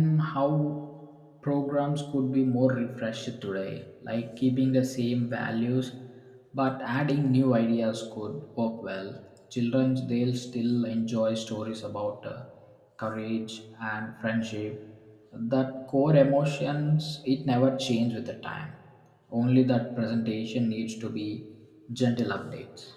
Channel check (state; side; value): identical; both; correlation 1.00